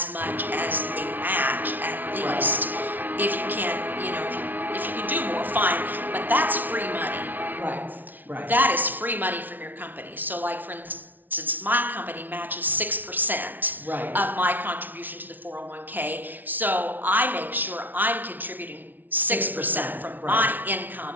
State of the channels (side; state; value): left; late; 0.084 ms